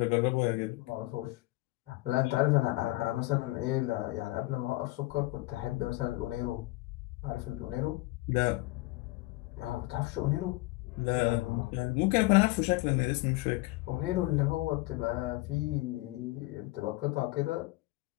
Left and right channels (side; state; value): right; quieter; 20.9 dB